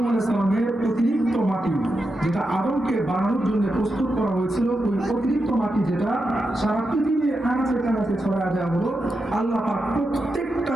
আলাইহিস সালামের অতিরিক্ত মাটি, যেটা আদমকে বানানোর জন্য প্রস্তুত করা হয়েছিল, ওই অতিরিক্ত মাটি যেটা সারা পৃথিবীর আনাচে কানাচে ছড়ায় দেওয়া হলো, আল্লাহ পাক প্রত্যেকটা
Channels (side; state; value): both; normal; correlation 0.87